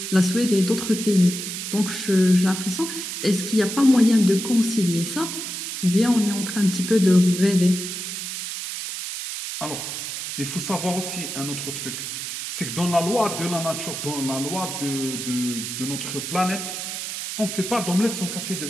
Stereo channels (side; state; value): right; noise; hiss, 6 dB below the sound